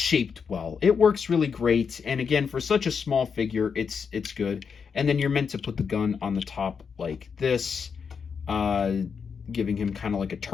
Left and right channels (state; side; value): quieter; right; 6.2 dB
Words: well. It works really great. And again, for such a small figure, it's good. And then you're meant to put the gun on the top like this, giving him kind of like a